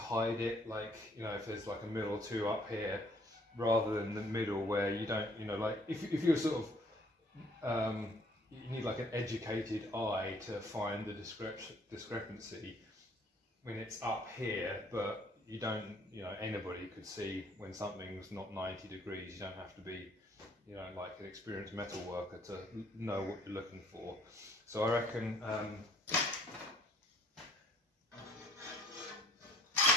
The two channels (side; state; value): both; normal; correlation 0.60